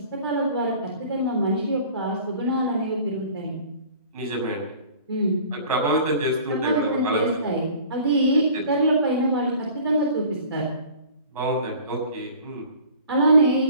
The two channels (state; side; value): inverted; both; correlation -0.47